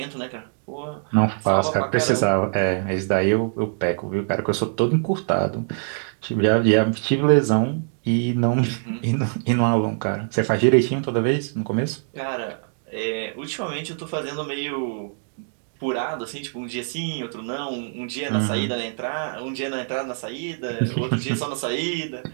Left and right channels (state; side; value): silent; left; digital silence